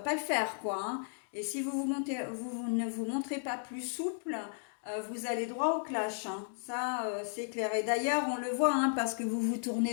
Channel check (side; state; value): right; silent; digital silence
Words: le faire, quoi, hein. Et si vous ne vous montrez pas plus souple, vous allez droit au clash, hein. Ça, c'est clair. Et d'ailleurs, on le voit, hein, parce que vous vous